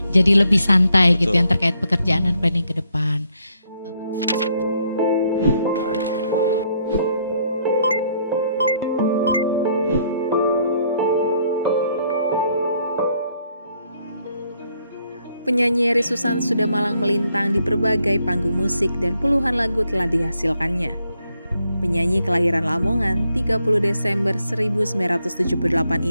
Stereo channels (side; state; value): both; inverted; correlation -0.73